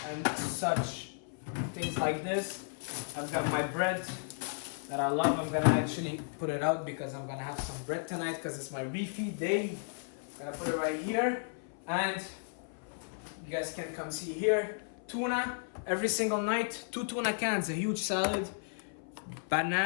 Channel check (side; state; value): right; silent; 55 dB below the other